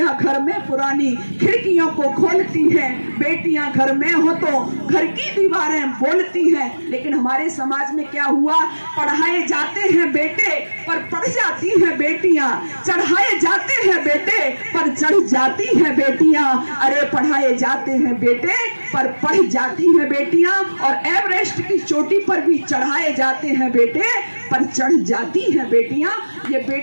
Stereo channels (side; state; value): both; inverted; correlation -1.00